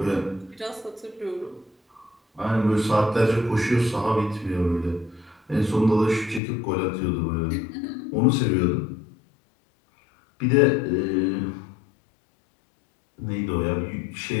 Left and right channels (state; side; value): drops out; right; at 6.4 s